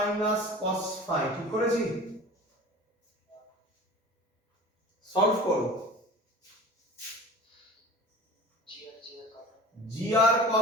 cos phi, ঠিক করেছি? সলভ করো। gr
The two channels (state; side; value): normal; both; correlation 0.39